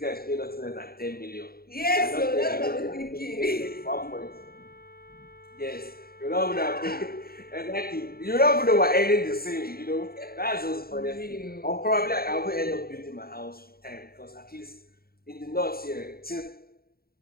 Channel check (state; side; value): late; right; 0.44 ms